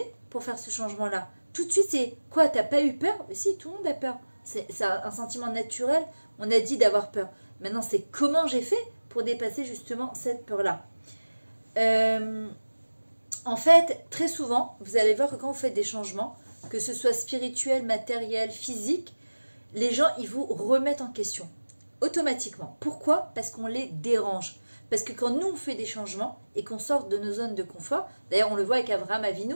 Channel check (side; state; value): both; inverted; correlation -1.00